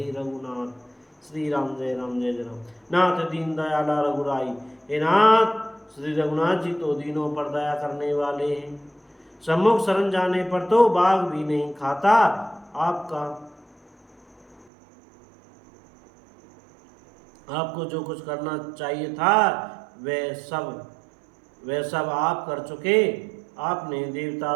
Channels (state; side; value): drops out; left; at 14.7 s